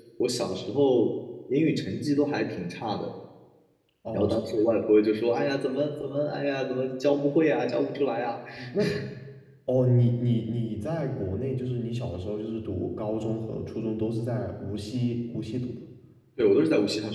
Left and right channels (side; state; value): both; identical; correlation 1.00